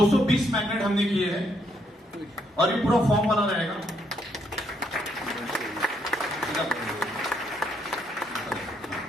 मैग्नेट हमने किए हैं और ये पूरा फॉर्म वाला रहेगा।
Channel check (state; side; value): normal; both; correlation 0.73